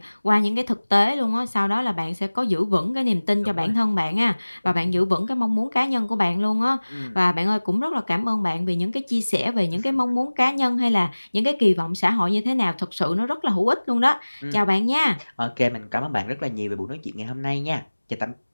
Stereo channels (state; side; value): inverted; both; correlation -1.00